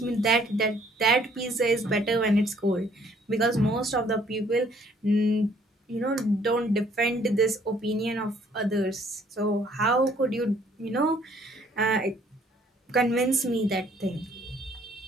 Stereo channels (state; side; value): normal; both; correlation 0.62